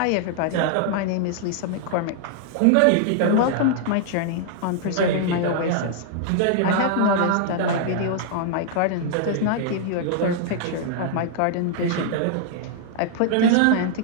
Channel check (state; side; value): different; both; correlation 0.00